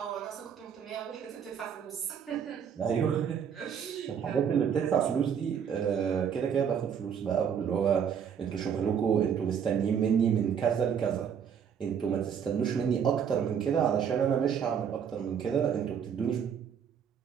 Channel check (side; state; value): left; quieter; 7.7 dB